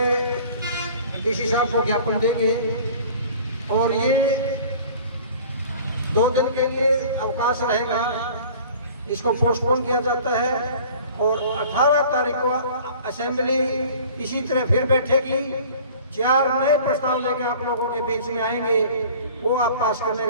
डीसी साहब को ज्ञापन देंगे और ये 2 दिन के लिए अवकाश रहेगा, इसको पोस्टपोन किया जाता है और 18 तारीख को असेंबली इसी तरह फिर बैठेगी। 4 नए प्रस्ताव लेके आप लोगों के बीच में आएंगे, वो आप पास करने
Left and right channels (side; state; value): both; inverted; correlation -0.46